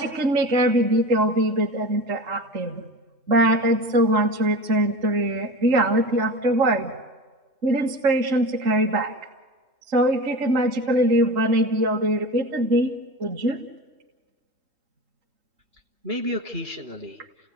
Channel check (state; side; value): late; left; 3.1 ms